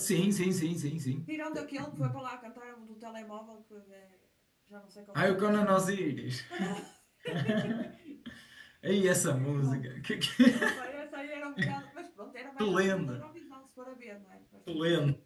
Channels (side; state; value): both; identical; correlation 1.00